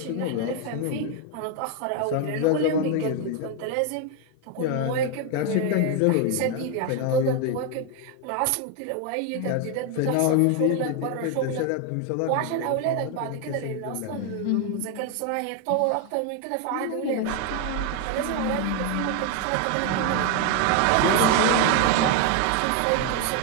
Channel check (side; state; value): both; different; correlation 0.01